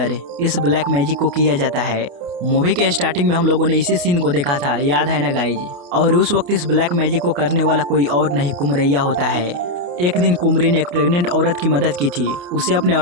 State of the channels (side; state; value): left; late; 28 ms